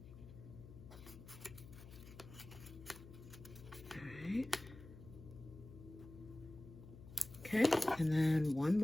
All right. Okay, and then one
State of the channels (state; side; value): noise; left; hum, 16 dB below the sound